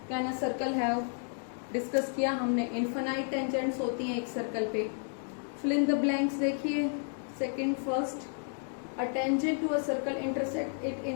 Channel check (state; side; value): silent; right; 57 dB below the other